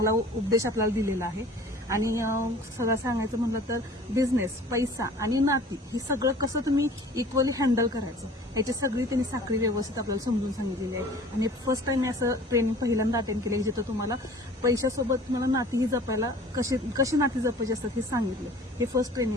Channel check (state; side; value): normal; both; correlation 0.47